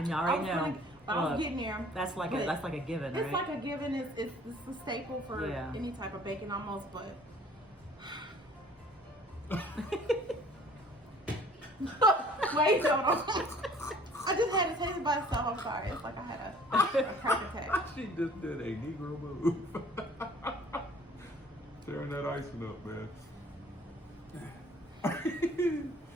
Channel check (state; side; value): normal; both; correlation 0.53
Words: I was know. gonna- but I was Look, getting there. That's like But a given, right? It's like a given. It's a staple for Yeah. any type of bacon almost, but. Wait, hold on. I just had to taste it by itself. I'm sorry. It's like I had a crack attack. She just did a Negro move. Tearing that icing up, man.